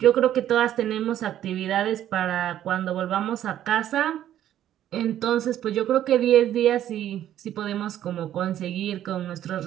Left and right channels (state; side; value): quieter; left; 11.6 dB